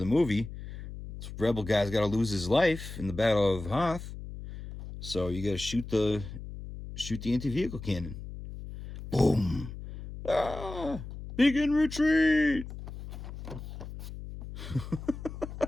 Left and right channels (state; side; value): noise; left; hum, 11 dB below the sound